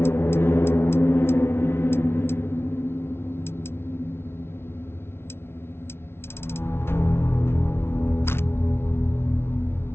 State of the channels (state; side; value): late; right; 0.12 ms